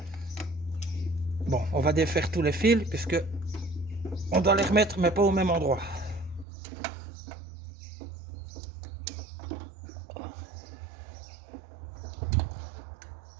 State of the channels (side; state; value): left; drops out; at 6.5 s